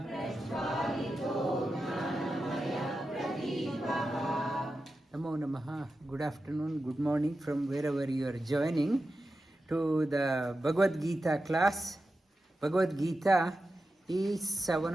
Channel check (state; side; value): normal; both; correlation 0.91